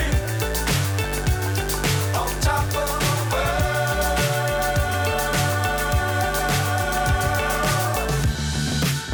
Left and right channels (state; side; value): identical; both; correlation 1.00